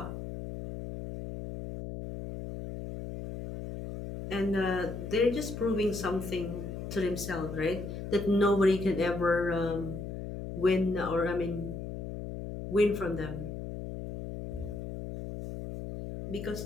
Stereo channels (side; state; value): left; noise; hum, 7 dB below the sound